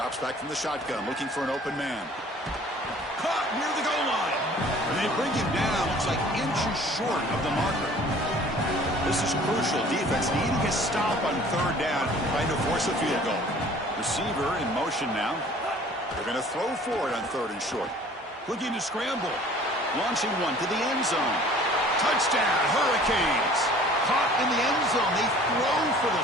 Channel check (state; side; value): normal; both; correlation 0.50